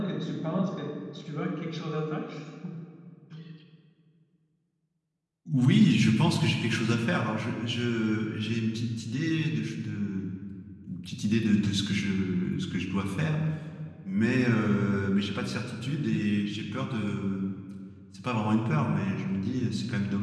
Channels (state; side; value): identical; both; correlation 1.00